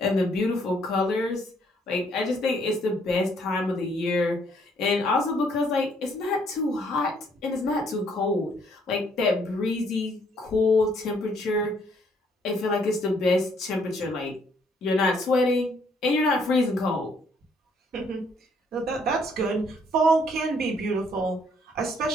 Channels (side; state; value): both; normal; correlation 0.67